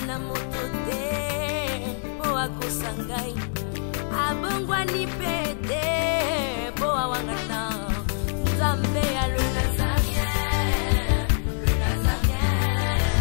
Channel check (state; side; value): silent; right; digital silence